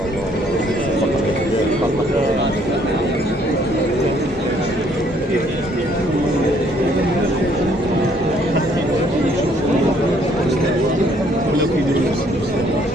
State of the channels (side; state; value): both; normal; correlation 0.64